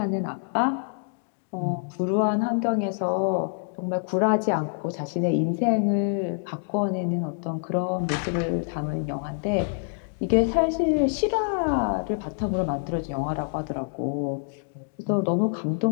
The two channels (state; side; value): silent; right; digital silence